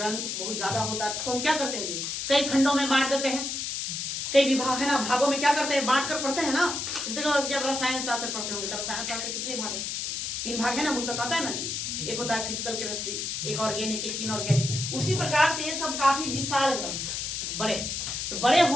बहुत ज्यादा होता है तो हम क्या करते हैं जी, कई खंडों में बांट देते हैं, कई विभाग है ना, भागों में क्या करते हैं, बांट कर पढ़ते हैं ना। देखो जब रसायन शास्त्र पढ़ते होंगे तो रसायन शास्त्र के कितने भाग है? 3 भाग है ना, मुझे तो आता है ना जी। एक होता है फिजिकल केमिस्ट्री, एक ऑर्गेनिक, एक इनऑर्गेनिक। उसी प्रकार से ये सब काफी विशाल ग्रंथ, बड़े। तो बड़े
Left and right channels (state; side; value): noise; left; hiss, 3 dB below the sound